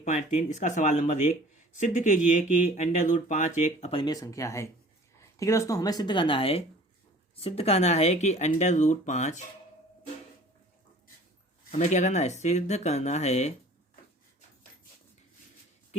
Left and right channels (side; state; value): both; normal; correlation 0.49